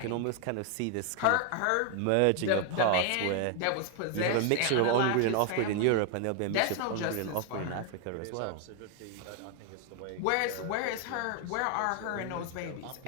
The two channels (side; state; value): both; different; correlation 0.00